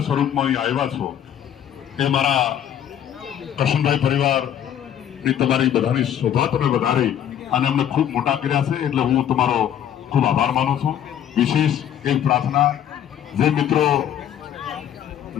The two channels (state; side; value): quieter; right; 10.0 dB